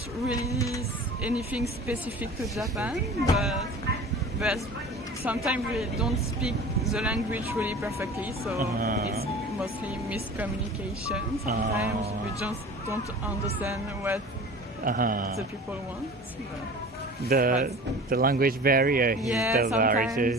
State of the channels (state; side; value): normal; both; correlation 0.40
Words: really anything specific to Japan, but sometimes we don't speak the language really perfectly, so it's mostly miscommunication. Sometimes we just don't understand what the people want. The language barrier is the